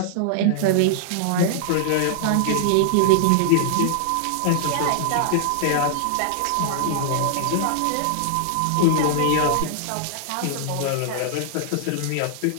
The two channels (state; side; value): different; both; correlation -0.01